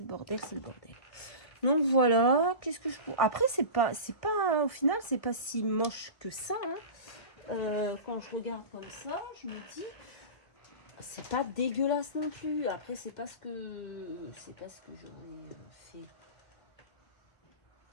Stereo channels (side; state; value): right; late; 1.7 ms